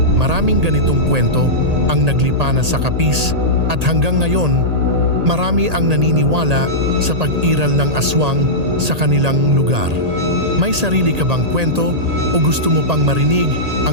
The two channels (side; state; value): left; late; 1.8 ms